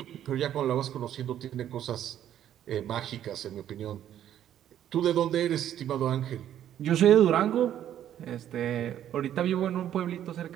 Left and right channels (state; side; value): quieter; left; 10.9 dB